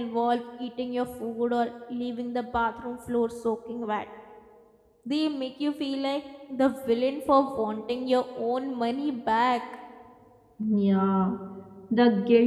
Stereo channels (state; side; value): identical; both; correlation 1.00